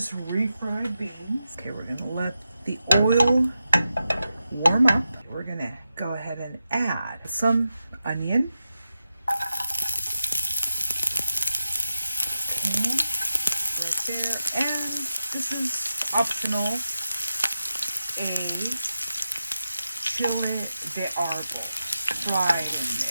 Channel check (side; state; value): both; inverted; correlation -0.90